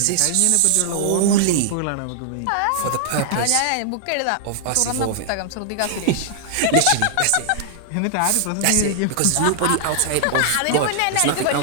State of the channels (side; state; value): both; different; correlation -0.01